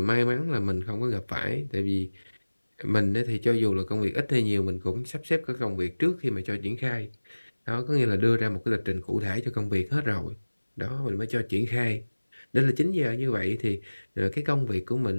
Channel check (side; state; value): both; inverted; correlation -1.00